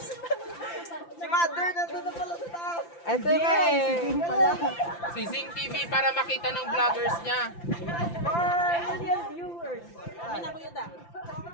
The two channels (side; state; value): right; late; 5.9 ms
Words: Si Mother, nandun na pala sa taas! Ito nga eh. Si Zing TV para makita ng vloggers niya. Viewers!